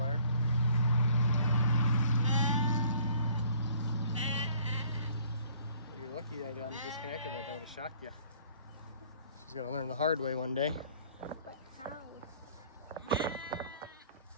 You're lucky I disconnected that. That would have shocked you. She's gonna learn the hard way one day. But how?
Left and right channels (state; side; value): inverted; both; correlation -0.56